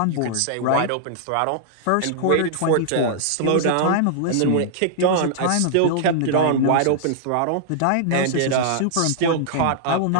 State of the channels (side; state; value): both; different; correlation -0.01